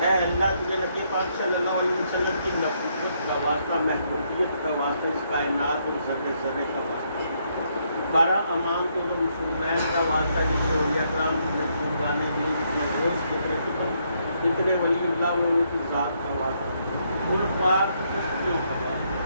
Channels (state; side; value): inverted; both; correlation -0.74